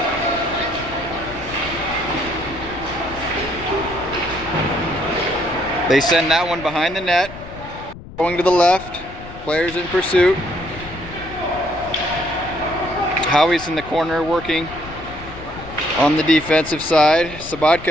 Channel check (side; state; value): left; noise; rumble, 15 dB below the sound